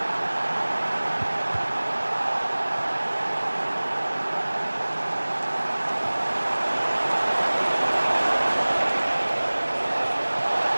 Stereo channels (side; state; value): both; inverted; correlation -1.00